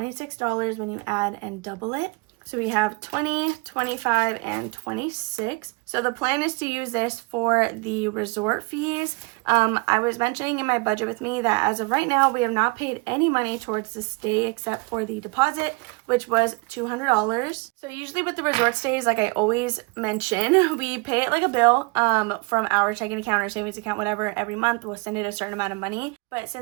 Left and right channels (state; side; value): quieter; left; 29.2 dB